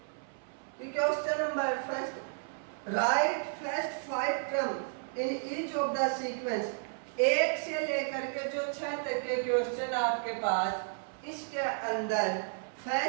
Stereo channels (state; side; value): silent; left; 56 dB below the other